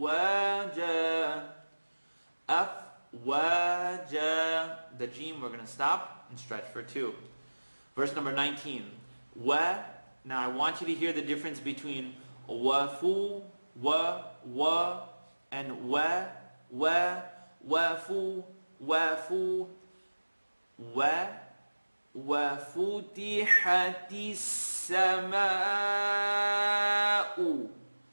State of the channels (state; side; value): inverted; both; correlation -1.00